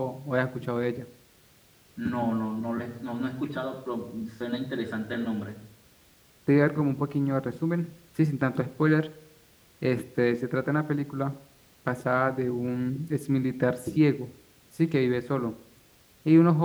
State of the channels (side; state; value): both; identical; correlation 1.00